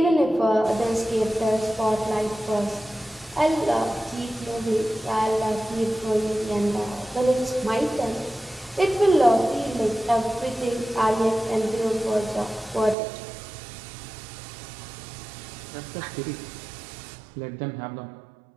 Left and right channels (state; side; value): drops out; left; at 13.0 s